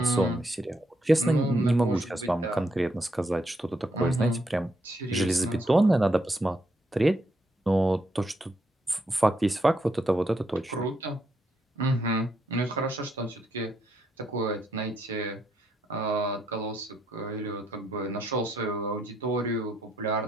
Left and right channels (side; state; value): both; normal; correlation 0.77